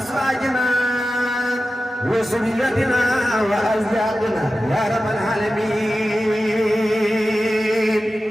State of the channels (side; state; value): both; normal; correlation 0.93